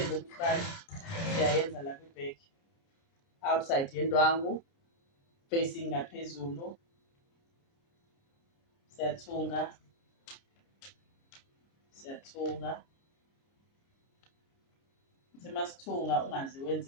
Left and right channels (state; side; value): late; right; 29 ms